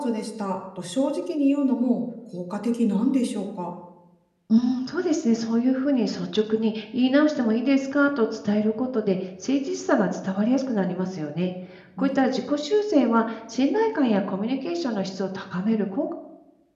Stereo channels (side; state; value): both; identical; correlation 1.00